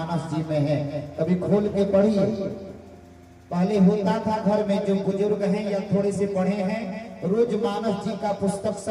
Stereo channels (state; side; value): identical; both; correlation 1.00